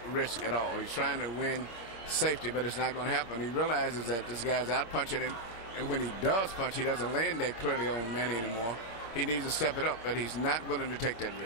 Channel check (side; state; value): right; late; 26 ms